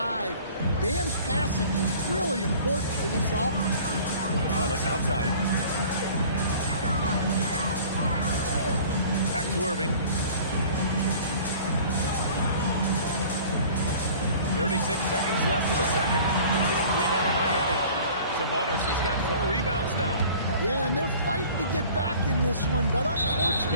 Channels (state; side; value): inverted; both; correlation -0.46